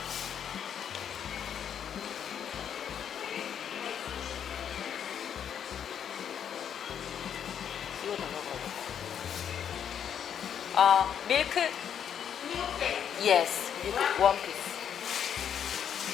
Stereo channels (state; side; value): quieter; right; 8.6 dB